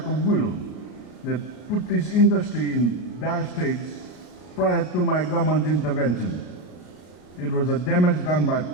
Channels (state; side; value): late; right; 33 ms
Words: of will that put this industry in dire straits prior to my government's intervention. It was a damage done by